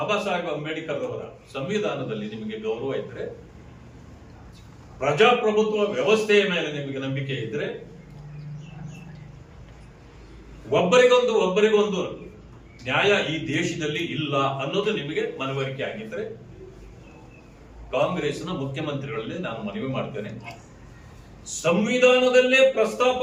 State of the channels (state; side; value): identical; both; correlation 1.00